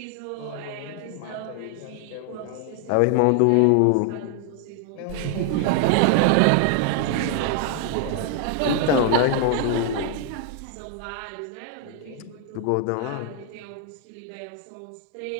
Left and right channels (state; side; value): different; both; correlation 0.00